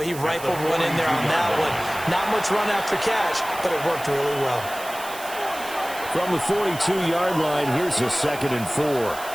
he rifled one in there on that one. Not much run after catch, but it worked really well. From the 42-yard line, here's a 2nd and 4.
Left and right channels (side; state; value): right; noise; hiss, 14 dB below the sound